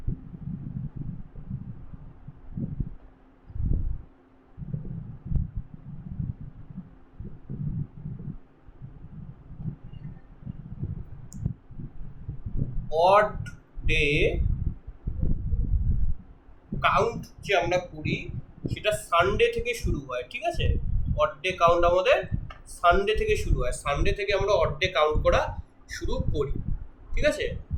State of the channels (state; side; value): identical; both; correlation 1.00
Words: অড ডে কাউন্ট যে আমরা করি সেটা সানডে থেকে শুরু হয়। ঠিক আছে, অড ডে কাউন্ট আমাদের সানডে থেকে শুরু হয়। সানডে থেকে আমরা অড ডে কাউন্ট করা শুরু করি। ঠিক আছে,